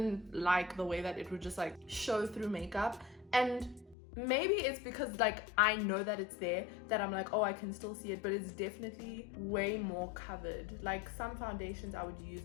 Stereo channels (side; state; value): right; drops out; at 4.0 s